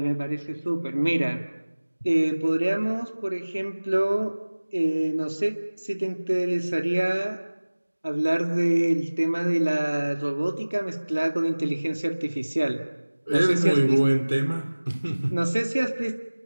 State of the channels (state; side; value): inverted; both; correlation -1.00